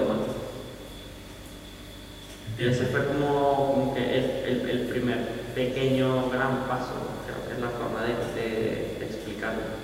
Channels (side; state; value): both; identical; correlation 1.00